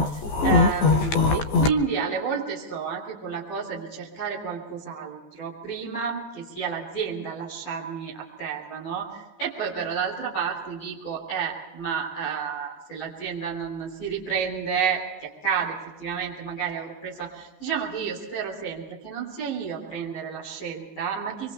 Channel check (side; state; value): right; late; 14 ms